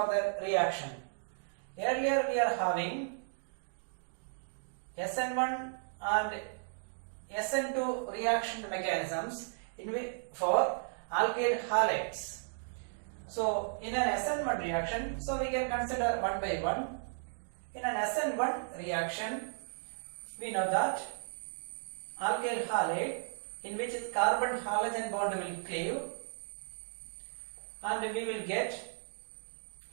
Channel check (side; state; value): left; silent; digital silence